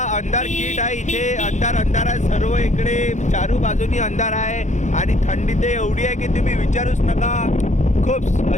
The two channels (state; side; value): late; right; 0.35 ms